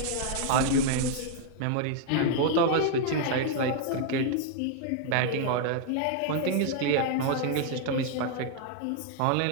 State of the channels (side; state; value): both; different; correlation 0.00